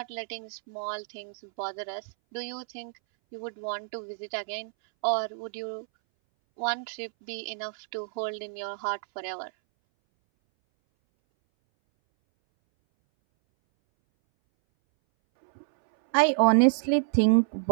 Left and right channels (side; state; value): left; silent; 59 dB below the other